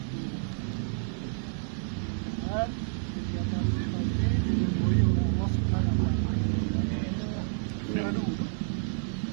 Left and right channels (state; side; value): silent; left; digital silence